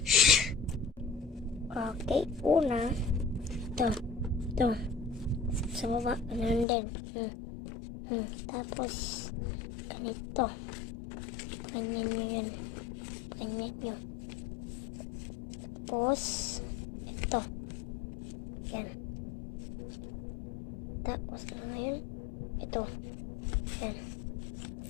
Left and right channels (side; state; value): right; drops out; at 6.7 s